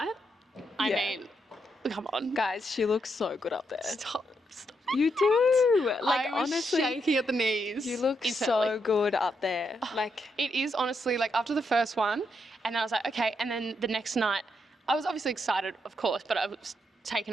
I mean, come on. Guys, she looks so good up there. Stop. You do. Like, I was honestly, shaking at the knees. you look instantly. so good up there. Like, It is honestly like after the first one, and I was like, okay. And then the next night, I was obviously excited, of course, but I was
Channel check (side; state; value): both; normal; correlation 0.79